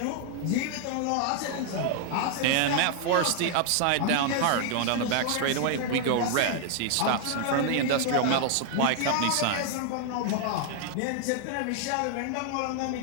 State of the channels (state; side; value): different; both; correlation 0.00